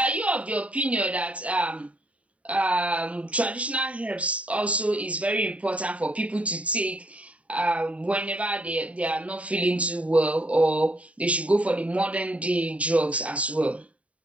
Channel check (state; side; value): late; left; 0.066 ms